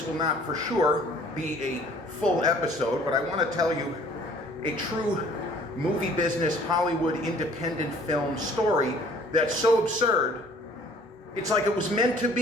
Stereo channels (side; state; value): both; normal; correlation 0.54